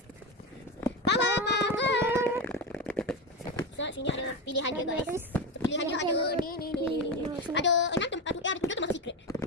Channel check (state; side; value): normal; both; correlation 0.17